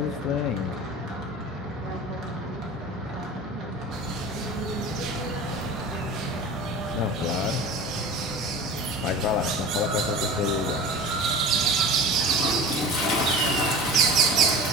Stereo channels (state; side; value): normal; both; correlation 0.36